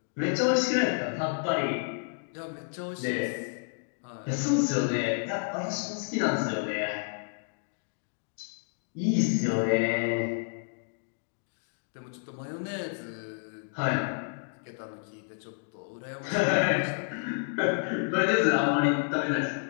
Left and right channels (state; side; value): silent; right; digital silence